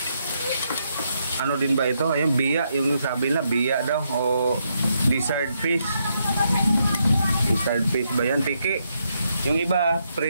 Ano din ba ito? Ayan, biya. Yung sabi na, biya daw. O lizard fish. Lizard fish ba yan? Tiki. Yung iba,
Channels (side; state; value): both; inverted; correlation -0.79